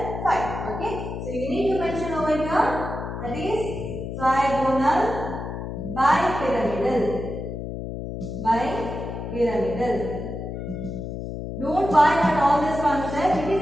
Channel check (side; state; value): left; noise; hum, 6 dB below the sound